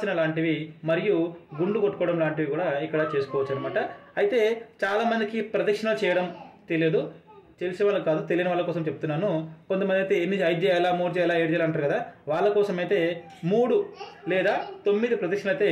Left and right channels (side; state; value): both; identical; correlation 1.00